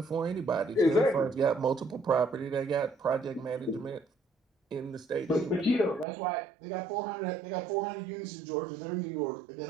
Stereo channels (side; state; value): left; drops out; at 6.1 s